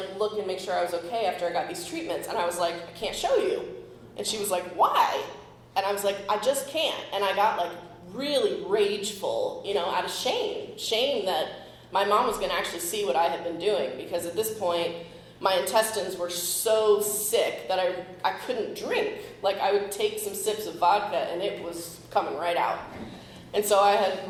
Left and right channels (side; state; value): both; identical; correlation 1.00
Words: look and make sure I was okay after I got these treatments. And I was like, I can't show you. And she was like, why? And I was like, I just can't. And I got, like, really rageful, you know, out of shame that my mom was going to actually see what I had been doing, because at this point, my intestines were so sick that I couldn't drink. Like, I would take some sips of vodka, and it was coming right out. And so I had